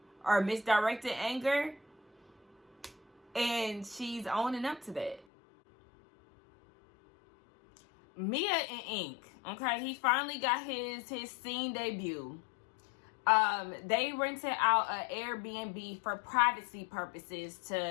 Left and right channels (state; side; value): drops out; right; at 5.2 s